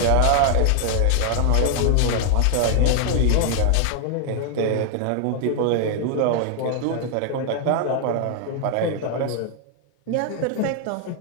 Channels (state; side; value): different; both; correlation 0.00